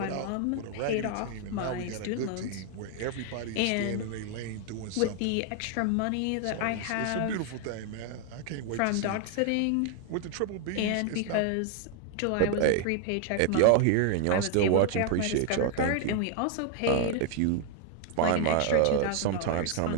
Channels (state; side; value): different; both; correlation 0.00